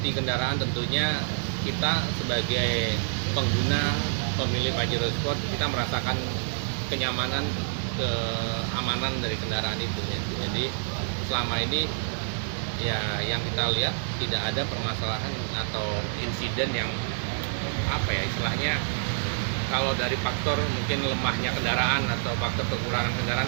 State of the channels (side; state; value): left; silent; 60 dB below the other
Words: kendaraan tentunya kita sebagai pengguna pemilik Pajero Sport kita merasakan kenyamanan, keamanan dari kendaraan itu ya. Jadi selama ini ya yang kita lihat tidak ada permasalahan atau insiden yang apa ya istilahnya, kalau dari faktor mungkin lemahnya kendaraan atau faktor kekurangan